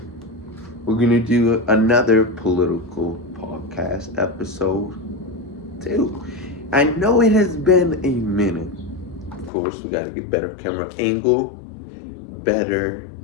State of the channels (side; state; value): right; drops out; at 9.5 s